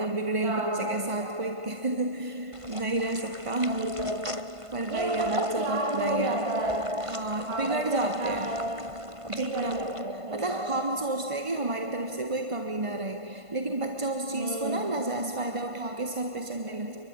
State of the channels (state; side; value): late; left; 1.5 ms